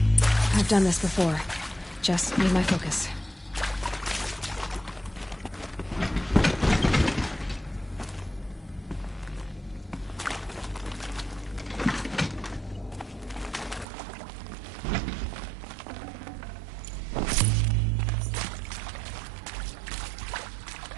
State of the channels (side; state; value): left; drops out; at 13.9 s